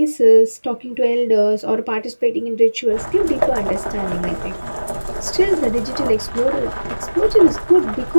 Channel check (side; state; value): both; inverted; correlation -1.00